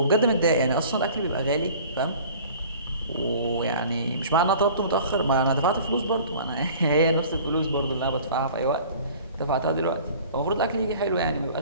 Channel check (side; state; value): both; inverted; correlation -0.47